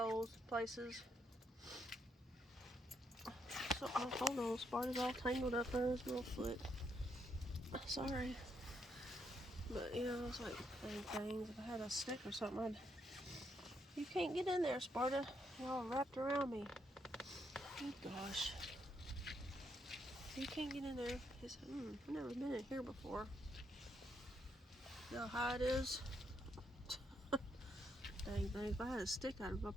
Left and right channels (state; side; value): normal; both; correlation 0.76